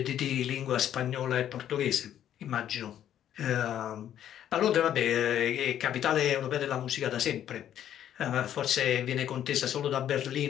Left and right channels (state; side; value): quieter; right; 10.7 dB